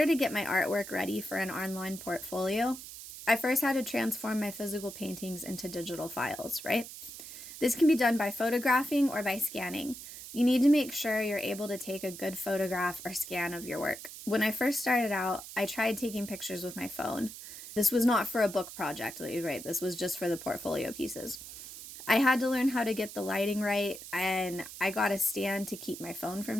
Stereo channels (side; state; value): right; noise; hiss, 12 dB below the sound